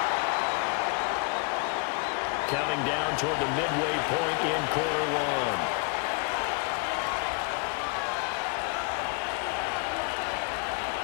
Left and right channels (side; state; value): right; quieter; 33.0 dB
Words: Counting down toward the midway point in quarter one.